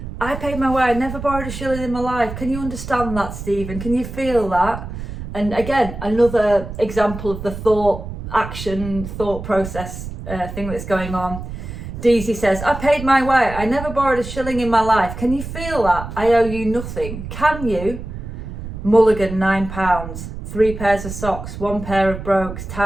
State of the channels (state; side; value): noise; right; rumble, 9 dB below the sound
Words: paid my way. I never borrowed a shilling in my life. Can you understand that, Stephen? Can you feel that? And again, another example of the thought process thing that's going on. Deasy says, I paid my way. I never borrowed a shilling in my life. Can you feel that? I owe you nothing. Can you? Mulligan, £9. 3 pairs of socks, 1 pair of brogues,